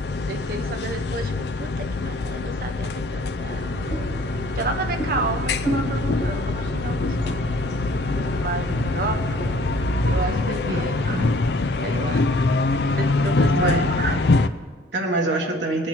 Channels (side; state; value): both; normal; correlation 0.56